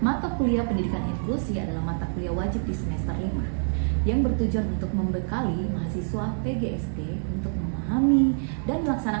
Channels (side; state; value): left; silent; 57 dB below the other